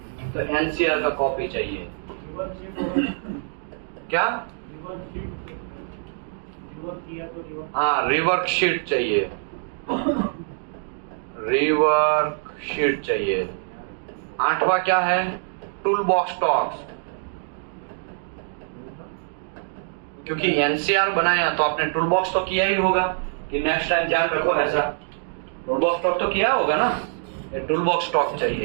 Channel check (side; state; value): left; silent; digital silence